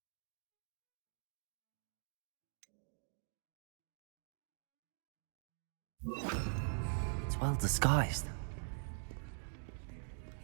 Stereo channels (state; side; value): silent; left; digital silence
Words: It's well disguised.